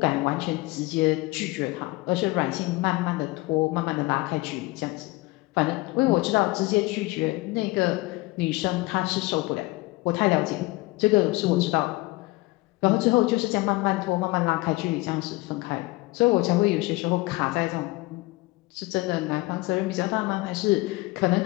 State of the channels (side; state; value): right; quieter; 21.9 dB